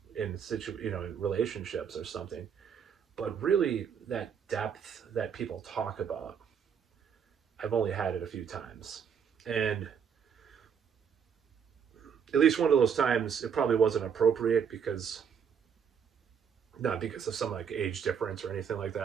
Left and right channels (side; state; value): left; quieter; 7.3 dB